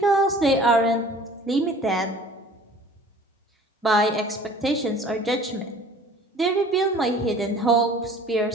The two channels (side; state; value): both; normal; correlation 0.48